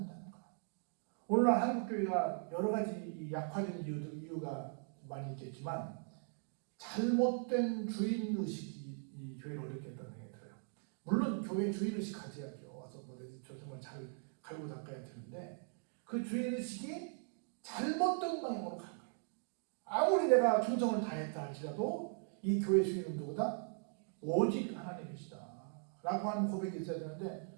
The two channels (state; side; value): silent; left; 51 dB below the other